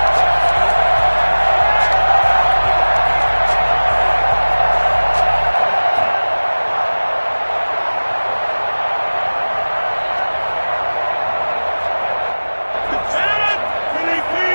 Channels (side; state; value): both; inverted; correlation -1.00